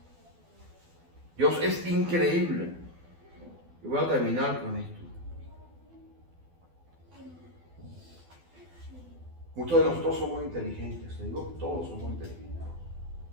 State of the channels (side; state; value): left; late; 12 ms